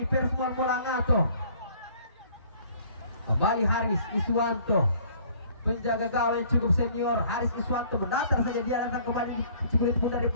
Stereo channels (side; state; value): both; inverted; correlation -0.56